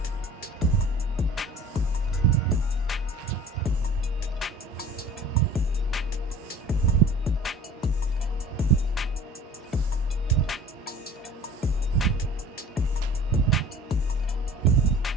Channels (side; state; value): both; normal; correlation 0.45